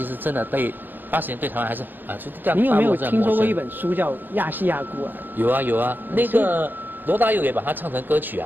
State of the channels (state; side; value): late; left; 0.092 ms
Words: 实真的对80年对台湾还是就这样。你有没有听说过一本书叫《亚细亚孤儿》？有啊，那个。罗大佑也把它唱成歌曲